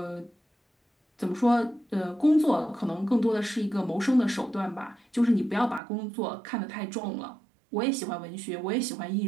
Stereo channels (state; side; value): drops out; left; at 5.8 s